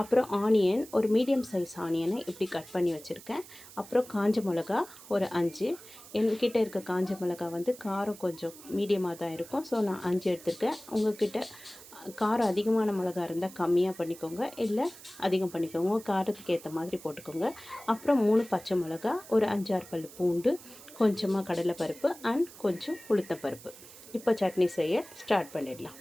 அப்புறம் ஆனியன், ஒரு மீடியம் சைஸ் ஆனியனை இப்படி கட் பண்ணி வச்சுருக்கேன். அப்புறம் காஞ்ச மிளகா ஒரு 5. என்கிட்ட இருக்க காஞ்ச மிளகா காரம் கொஞ்சம் மீடியமாக தான் இருக்கும். ஸோ நான் 5 எடுத்துருக்கேன். உங்கள்கிட்ட காரம் அதிகமான மிளகா இருந்தால் கம்மியாக பண்ணிக்கோங்க, இல்லை அதிகம் பண்ணிக்கோங்க. உங்கள் காரத்துக்கு ஏற்ற மாதிரி போட்டுக்கோங்க. அப்புறம் 3 பச்சை மிளகா, ஒரு 5-6 பல் பூண்டு, கொஞ்சமாக கடலைப்பருப்பு அண்ட் கொஞ்சம் உளுத்தப்பருப்பு. இப்போ சட்னி செய்ய ஸ்டார்ட் பண்ணிடலாம்.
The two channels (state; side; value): noise; right; hiss, 18 dB below the sound